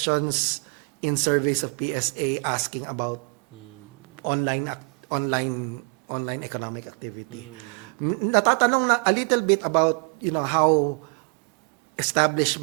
in surveys of PSA asking about online economic activity. Natatanong na a little bit about how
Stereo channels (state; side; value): quieter; left; 36.7 dB